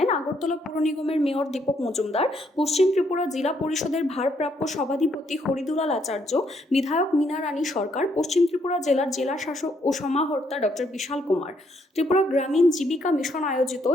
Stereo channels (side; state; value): both; normal; correlation 0.72